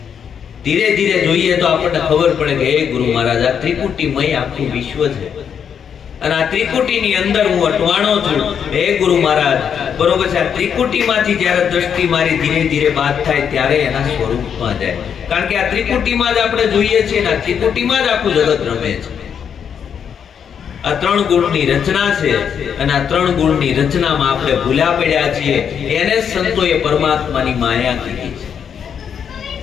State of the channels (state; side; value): quieter; right; 7.7 dB